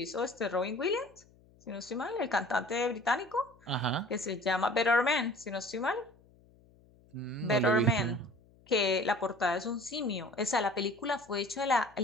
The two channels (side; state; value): left; noise; hum, 28 dB below the sound